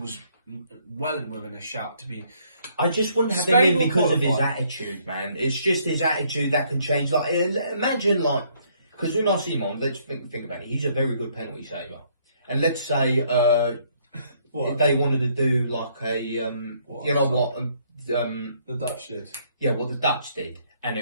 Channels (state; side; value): inverted; both; correlation -0.67